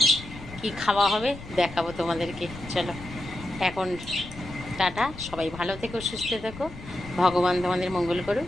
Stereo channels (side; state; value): left; noise; rumble, 15 dB below the sound